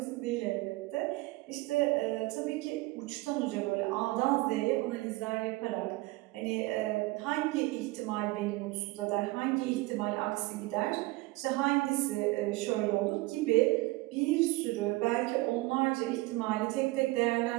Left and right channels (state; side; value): quieter; left; 21.1 dB